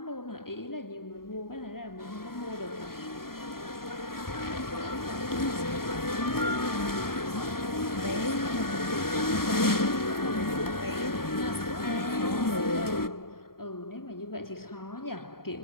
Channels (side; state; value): right; late; 0.93 ms